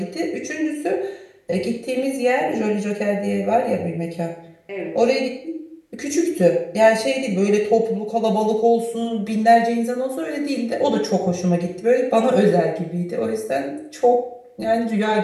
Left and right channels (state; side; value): identical; both; correlation 1.00